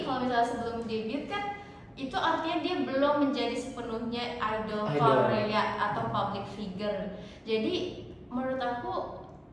kalau misalnya sebelum debut kan itu artinya dia belum menjadi sepenuhnya idol Idol. Korea atau public figure. Jadi menurut aku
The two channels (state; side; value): identical; both; correlation 1.00